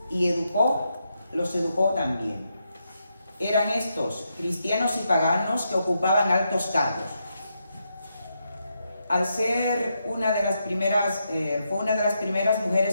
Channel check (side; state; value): both; inverted; correlation -0.82